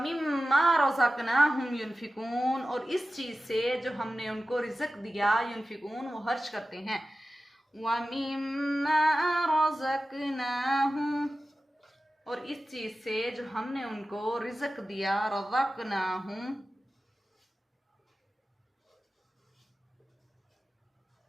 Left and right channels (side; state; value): both; normal; correlation 0.95